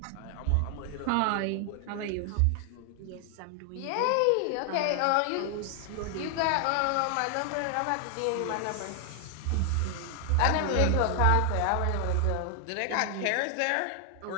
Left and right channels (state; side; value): different; both; correlation 0.00